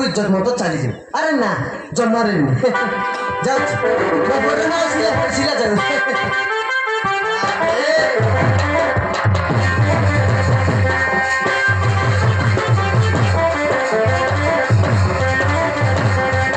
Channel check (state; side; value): identical; both; correlation 1.00